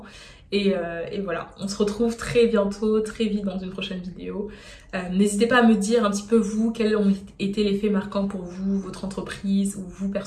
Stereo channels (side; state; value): both; identical; correlation 1.00